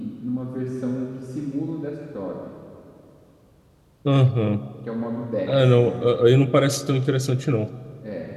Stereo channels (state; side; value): identical; both; correlation 1.00